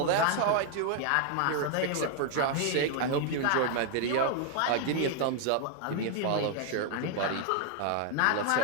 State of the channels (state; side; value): different; both; correlation 0.00